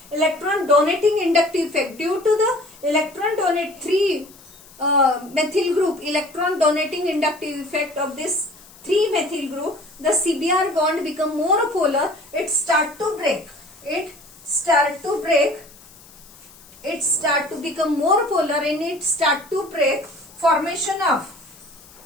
electron donating inductive effect. Due to the electron donate 3 methyl group electron donating inductive effect of this 3 methyl group, the CBr bond become more polar. It start to become more polar and it start to break. Formation of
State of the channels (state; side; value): noise; left; hiss, 23 dB below the sound